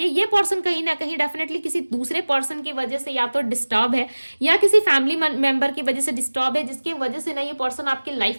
ये पर्सन कहीं ना कहीं डेफिनेटली किसी दूसरे पर्सन की वजह से या तो डिस्टर्ब है, या किसी फैमिली मेंबर की वजह से डिस्टर्ब है, जिसकी वजह से ना ये पर्सन आपके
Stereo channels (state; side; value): inverted; both; correlation -1.00